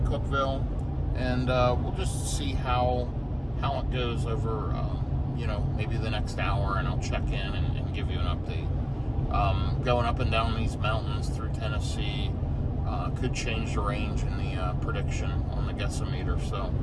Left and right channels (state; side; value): identical; both; correlation 1.00